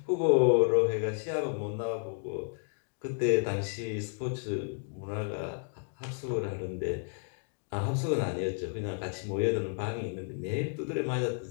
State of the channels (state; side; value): silent; right; 57 dB below the other